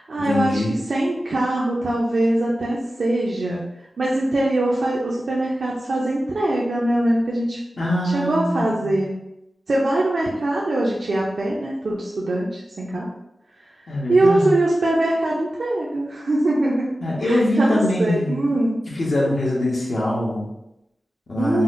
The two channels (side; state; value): both; normal; correlation 0.93